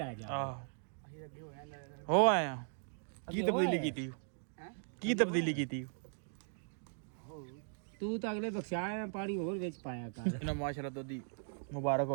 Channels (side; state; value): left; silent; digital silence